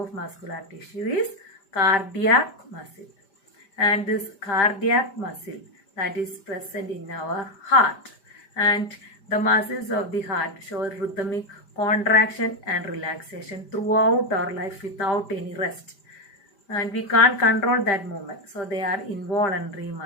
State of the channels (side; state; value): right; late; 5.1 ms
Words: muscular tissue is cardiac muscle. And this cardiac muscle, that is present in our heart. And the muscles of the heart show rhythmic contraction and relaxation throughout our life without any rest. And we can't control that movement. So they are involuntary